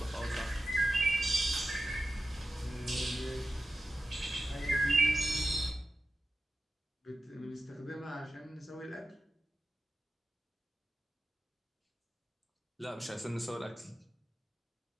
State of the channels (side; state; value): both; normal; correlation 0.93